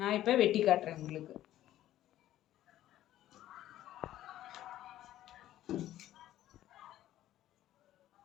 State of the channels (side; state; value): right; quieter; 13.3 dB